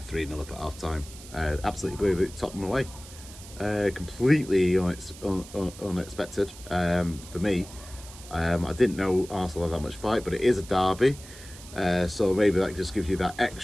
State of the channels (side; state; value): right; noise; hiss, 17 dB below the sound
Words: up at half time. Absolutely blew Tottenham away. Completely unexpected for me. I didn't know Arsenal had that much fight, but it is a derby. So maybe that just gives you that